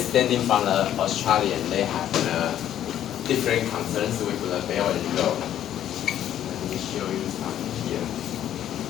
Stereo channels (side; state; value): right; quieter; 11.1 dB